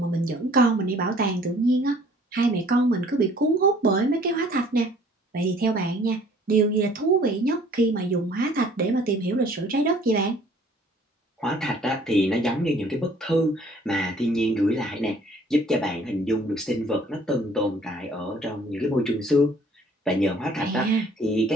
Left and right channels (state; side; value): normal; both; correlation 0.56